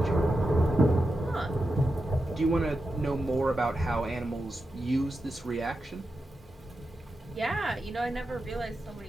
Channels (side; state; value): both; normal; correlation 0.89